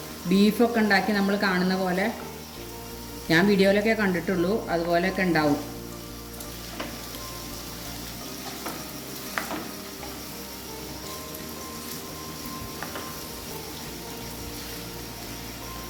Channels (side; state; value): both; identical; correlation 1.00